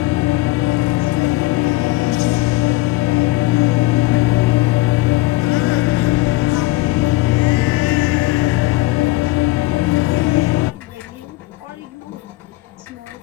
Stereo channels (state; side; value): quieter; right; 19.4 dB